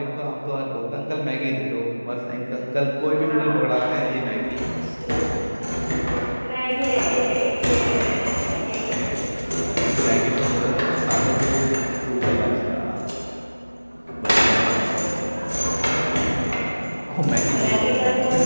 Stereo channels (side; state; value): both; inverted; correlation -1.00